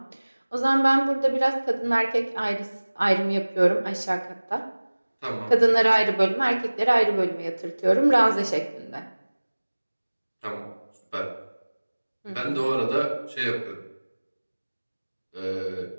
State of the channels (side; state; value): both; inverted; correlation -1.00